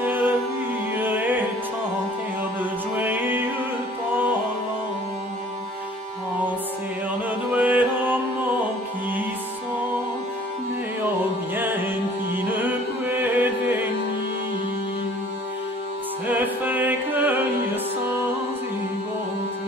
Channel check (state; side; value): normal; both; correlation 0.53